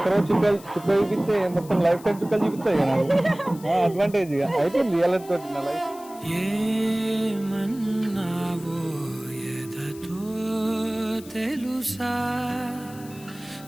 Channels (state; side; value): noise; left; hiss, 20 dB below the sound